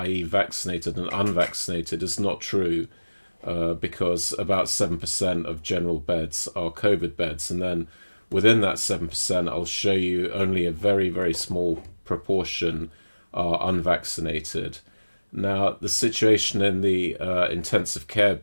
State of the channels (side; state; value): both; inverted; correlation -1.00